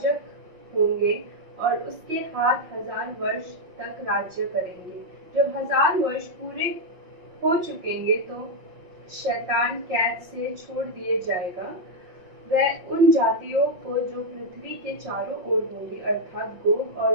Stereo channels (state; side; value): late; left; 5.6 ms